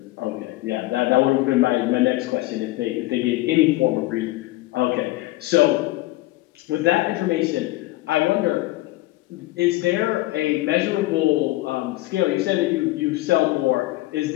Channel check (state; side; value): quieter; right; 18.7 dB